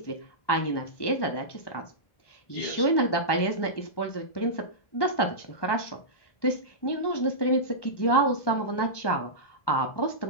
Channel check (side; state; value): right; late; 1.2 ms